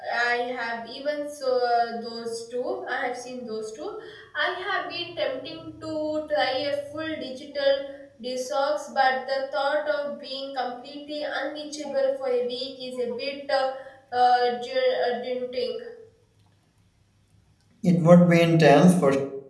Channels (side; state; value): both; identical; correlation 1.00